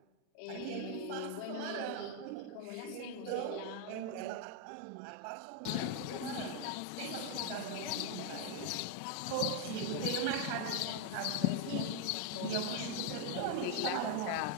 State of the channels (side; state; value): both; different; correlation 0.01